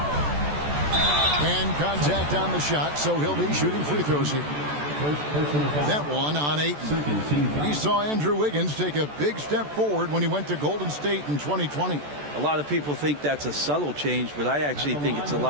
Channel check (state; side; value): late; left; 14 ms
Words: And contact on the shot, so he'll be shooting free throws here. That one on Ayton. We saw Andrew Wiggins take a big step forward when he went to Golden State in 2020. A lot of people think that's a subtle change, but I actually think it's a